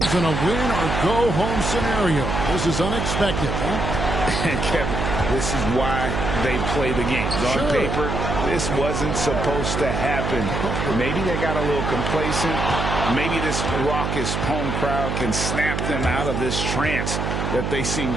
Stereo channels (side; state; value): right; noise; hum, 2 dB below the sound